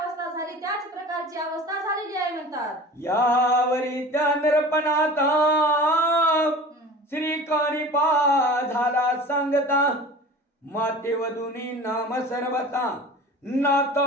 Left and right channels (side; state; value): both; normal; correlation 0.39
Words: झाली त्याच प्रकारची अवस्था झालेली आहे म्हणतात. यावरी त्या नरपणाता श्रीकाणीपा झाला सांगता माते वधुनी नाम सर्वता